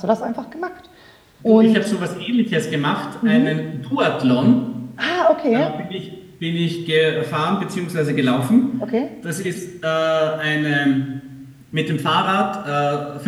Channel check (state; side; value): identical; both; correlation 1.00